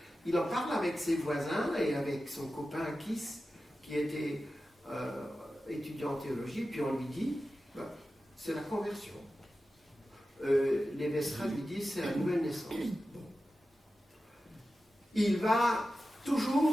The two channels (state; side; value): normal; both; correlation 0.93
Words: Il en parle avec ses voisins et avec son copain Kiss, qui était étudiant en théologie, puis on lui dit, c'est la conversion. Les Vestra lui disent, c'est la nouvelle naissance. Il va